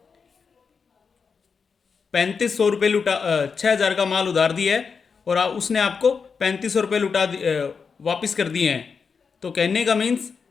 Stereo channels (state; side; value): quieter; right; 5.6 dB